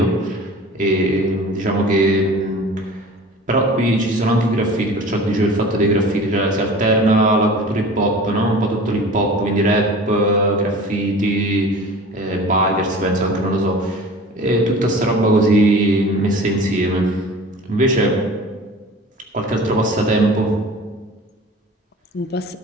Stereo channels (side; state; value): both; normal; correlation 0.40